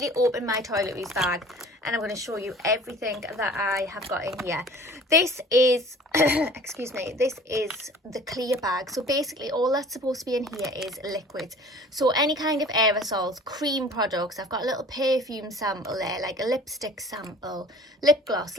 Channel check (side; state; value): both; normal; correlation 0.47